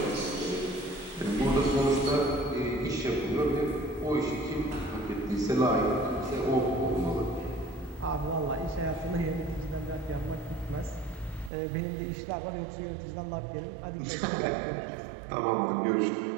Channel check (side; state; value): left; drops out; at 11.5 s